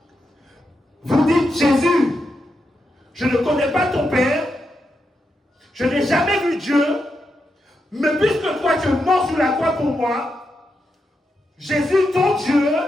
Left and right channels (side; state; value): both; normal; correlation 0.85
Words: dites, Jésus, je ne connais pas ton Père, je n'ai jamais vu Dieu, mais puisque toi tu es mort sur la croix pour moi, Jésus, ton Dieu,